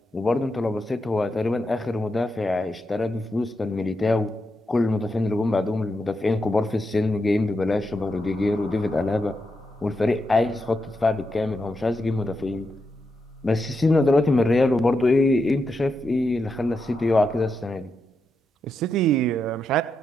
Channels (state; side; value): normal; both; correlation 0.85